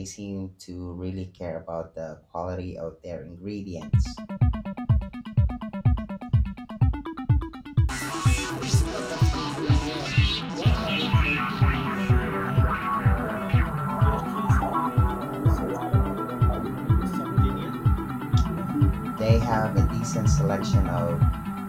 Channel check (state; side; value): identical; both; correlation 1.00